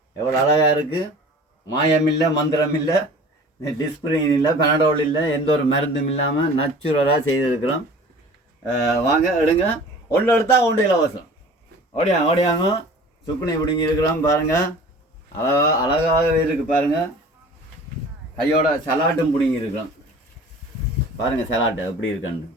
எவ்வளோ அழகாக இருக்குது. மாயம் இல்லை, மந்திரம் இல்லை, டிஸ்பிரின் இல்லை, பெனடோல் இல்லை, எந்த ஒரு மருந்தும் இல்லாமல் நேச்சுரலாக செய்திருக்கிறோம். வாங்க எடுங்க, ஒன்று எடுத்தால் ஒன்று இலவசம். ஓடியாங்க சுக்குனி பிடிங்கி இருக்கிறோம். பாருங்கள் அழகாகவே இருக்குது. பாருங்கள் கையோட சலாட்டும் பிடிங்கி இருக்கிறோம். பாருங்கள் சலாட்டு எப்படி இருக்கேன்னு,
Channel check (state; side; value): normal; both; correlation 0.44